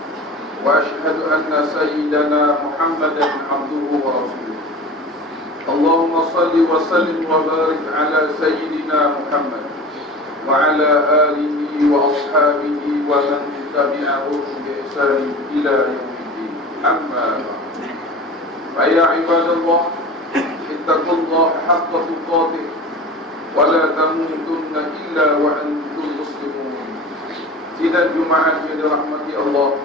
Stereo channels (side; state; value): both; normal; correlation 0.36